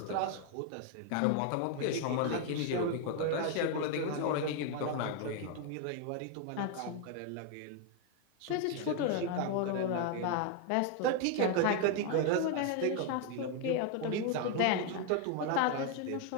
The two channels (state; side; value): different; both; correlation 0.01